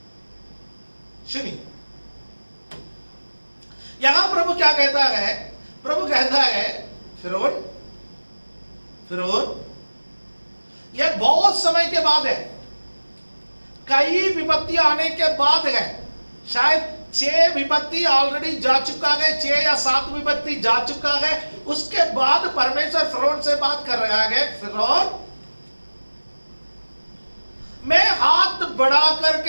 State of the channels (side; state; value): both; inverted; correlation -1.00